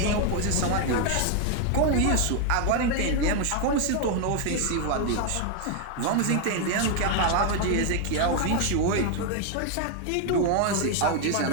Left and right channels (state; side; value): different; both; correlation 0.01